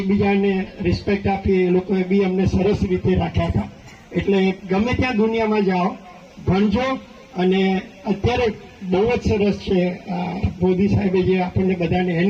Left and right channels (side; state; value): both; identical; correlation 1.00